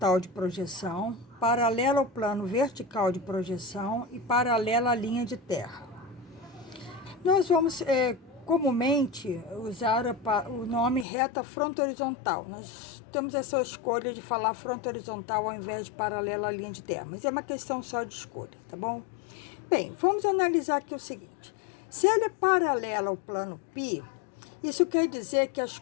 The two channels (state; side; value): drops out; right; at 11.1 s